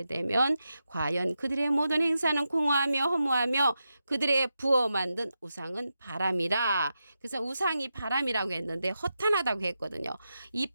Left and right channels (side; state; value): both; inverted; correlation -0.88